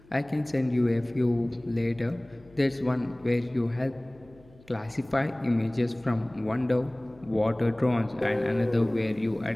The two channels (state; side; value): noise; left; hum, 26 dB below the sound